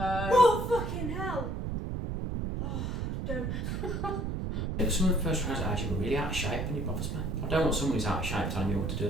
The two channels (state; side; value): noise; right; rumble, 2 dB below the sound